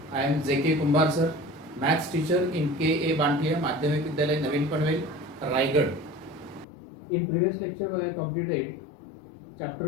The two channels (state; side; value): drops out; right; at 6.7 s